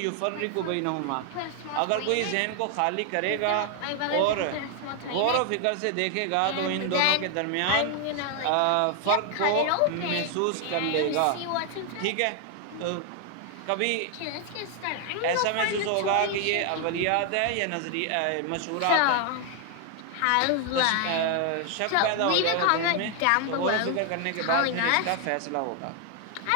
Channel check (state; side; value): different; both; correlation 0.00